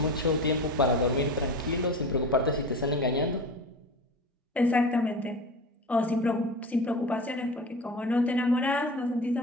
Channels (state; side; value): normal; both; correlation 0.31